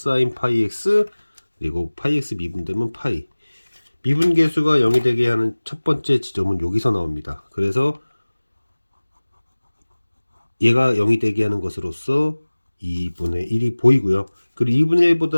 파이 x 그리고 파이 x 미분되면 파이. 미분 계수가 0이 되게 하는 첫 번째 지점은 여기서 나옵니다. 그래서 얘가 0이 되게 하는 것으로서 2분의 1이 보이고요. 그리고 2분의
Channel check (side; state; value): both; inverted; correlation -1.00